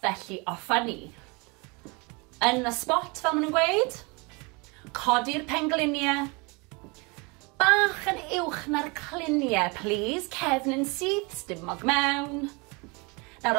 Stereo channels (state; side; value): quieter; left; 28.8 dB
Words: felly offa ni. Yn y spot fel maen nhw'n gweud, codi'r pengliniau, bach yn uwch na'r cliniau, please, cefn yn syth, stumog mewn.